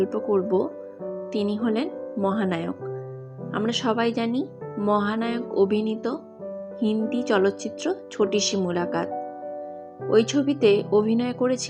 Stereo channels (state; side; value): identical; both; correlation 1.00